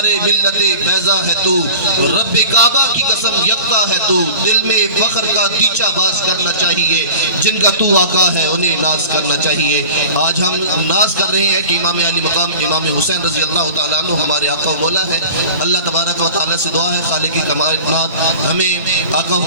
ملت بیضا ہے تو، رب کعبہ کی قسم یکتا ہے تو، دل میں فخر کا دیچہ باز کرنا چاہیے، جن کا تو آقا ہے انہیں ناز کرنا چاہیے۔ آج ہم ناز کر رہے ہیں کہ امام علی مقام امام حسین رضی اللہ تعالیٰ عنہ ہمارے آقا و مولا ہے۔ اللہ تبارک و تعالیٰ سے دعا ہے خالق کائنات ہمیں آقا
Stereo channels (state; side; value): inverted; both; correlation -0.40